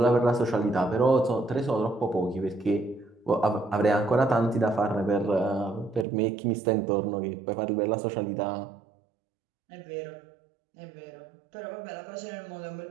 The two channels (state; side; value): drops out; left; at 6.1 s